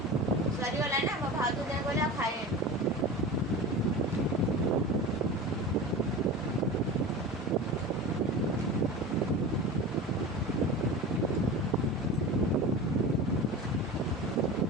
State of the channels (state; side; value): normal; both; correlation 0.31